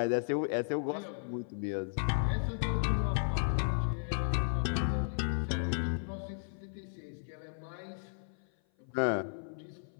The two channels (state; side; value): silent; right; 55 dB below the other